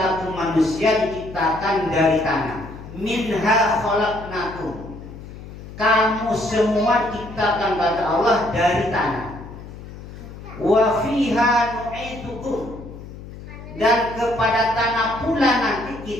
manusia diciptakan dari tanah. Minha khalaqnakum. Kamu semua diciptakan kata Allah dari tanah. Wa fiha nu'idukum. Dan kepada tanah pula nanti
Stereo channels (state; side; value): noise; left; hum, 14 dB below the sound